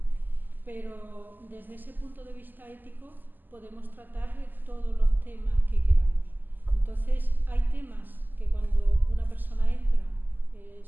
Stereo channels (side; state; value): left; late; 0.088 ms